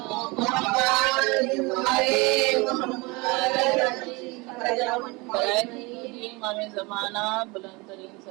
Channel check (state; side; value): quieter; left; 25.8 dB